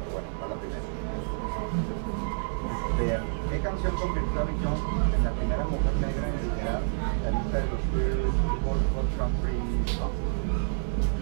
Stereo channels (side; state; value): left; silent; digital silence